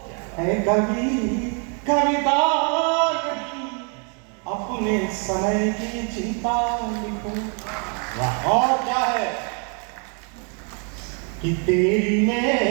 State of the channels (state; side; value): quieter; left; 39.0 dB